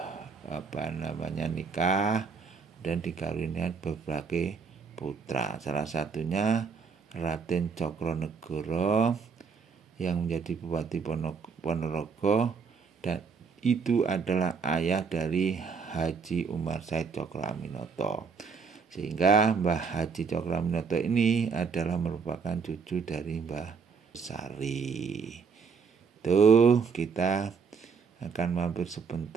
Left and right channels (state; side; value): quieter; left; 5.5 dB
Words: nikah dan dikaruniai berbagai putra. Salah satunya Raden Cokronegoro yang menjadi Bupati Ponorogo, dan itu adalah ayah dari Haji Umar Said Cokroaminoto. Sehingga Mbah Haji Cokroaminoto ini adalah merupakan cucu dari Mbah Besari. Itu kita akan mampir